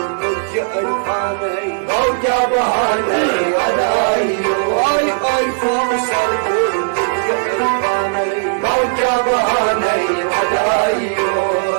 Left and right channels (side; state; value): left; silent; digital silence